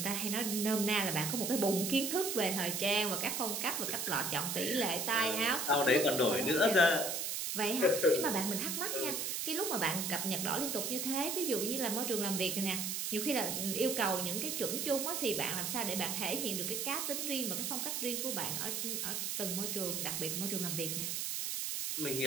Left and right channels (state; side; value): noise; right; hiss, 1 dB below the sound